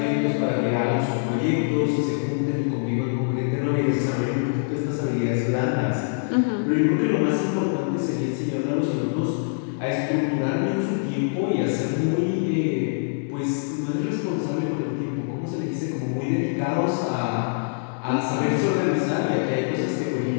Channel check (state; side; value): silent; right; digital silence